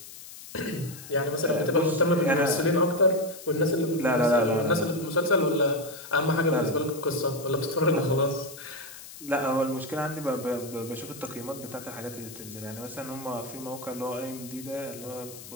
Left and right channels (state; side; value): noise; left; hiss, 15 dB below the sound